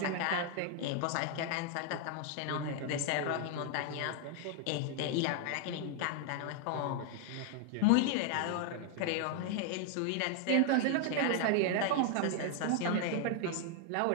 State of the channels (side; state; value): both; different; correlation 0.00